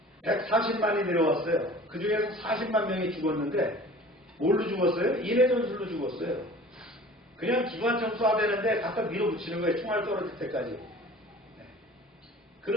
140만이 내려왔어요. 그 중에서 40만 명이 죽었는데 뭘로 죽었어요? 인해 전술로 죽었어요. 그냥 기관총 쏴대는데 갖다 밀어붙이는 거예요. 총알 떨어질 때까지.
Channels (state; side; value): normal; both; correlation 0.44